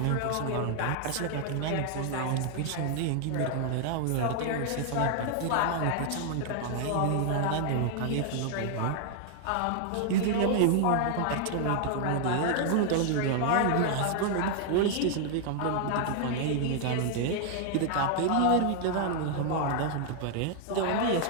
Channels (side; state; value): both; different; correlation 0.00